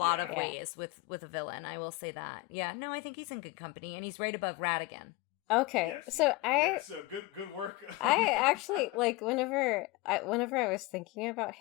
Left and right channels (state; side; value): quieter; right; 20.4 dB